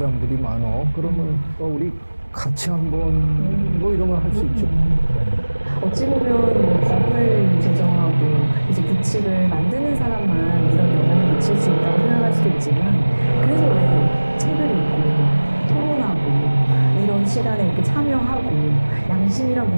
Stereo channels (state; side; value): inverted; both; correlation -1.00